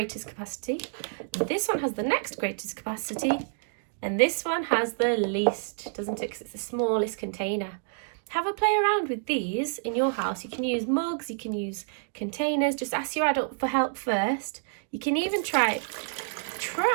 capacity. This one has the next greatest capacity. And this one has the least, doesn't it? Because it's the smallest container. Have a play around with these in your house. You can use mugs, you can use containers. Just ask your adult for help first. You can even try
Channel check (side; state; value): left; silent; digital silence